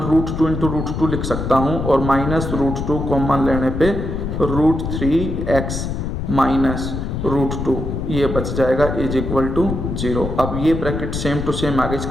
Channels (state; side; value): noise; left; rumble, 4 dB below the sound